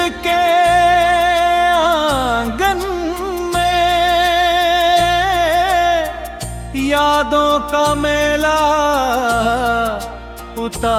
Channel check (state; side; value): identical; both; correlation 1.00